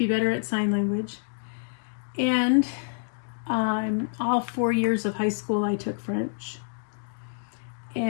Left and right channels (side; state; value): right; silent; digital silence